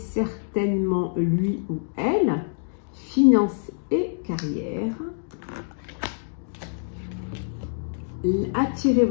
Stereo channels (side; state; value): right; silent; digital silence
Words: lui ou elle, finance et carrière. Attirez